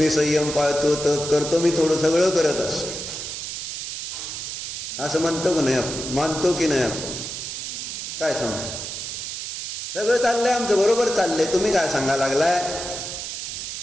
संयम पाळतो, तप करतो, मी थोडं सगळं करत असतो. असं म्हणतो की नाही आपण? मानतो की नाही आपण? काय सांगतो? सगळं चाललंय आमचं, बरोबर चाललंय, तुम्ही काय सांगा लागलाय?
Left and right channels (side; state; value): right; noise; hiss, 6 dB below the sound